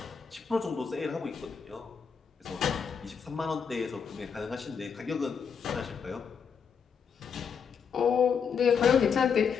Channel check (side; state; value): right; quieter; 6.5 dB